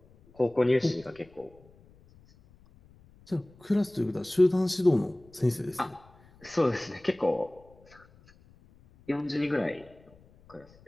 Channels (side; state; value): left; noise; rumble, 27 dB below the sound